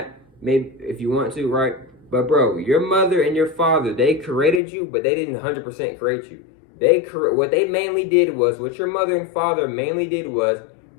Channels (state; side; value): drops out; right; at 4.6 s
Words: Maybe if you want to, right? But bro, your mother and your father, they created you, but they didn't 100% create you. What they mainly did was, what your mother and father mainly did was,